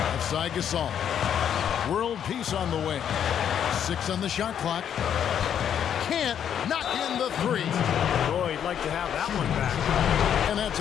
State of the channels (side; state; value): right; quieter; 9.0 dB